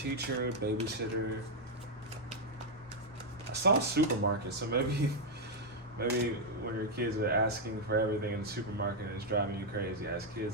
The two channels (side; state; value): both; normal; correlation -0.01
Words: babysitter. I saw a supermarket, so maybe when your kids are asking for everything in the supermarket, it's driving you crazy, as